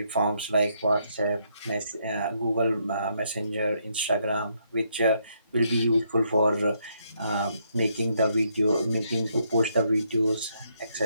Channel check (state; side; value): inverted; both; correlation -0.74